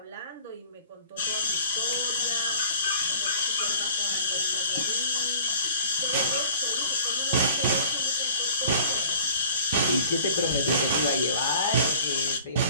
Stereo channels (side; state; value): both; inverted; correlation -0.49